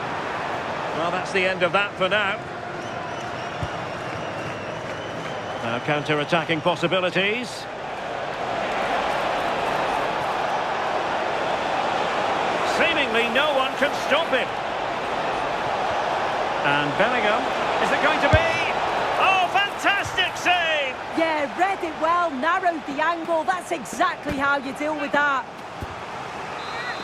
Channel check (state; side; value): identical; both; correlation 1.00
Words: Well, that's the end of that for now. Now counter-attacking possibilities. Seemingly no one can stop him. And Bellingham, is it going to be? Oh, fantastic save! Yeah, read it well, narrowed the angle. That's exactly how you deal with that.